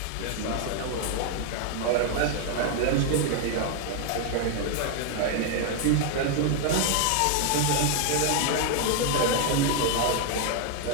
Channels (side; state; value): both; different; correlation 0.00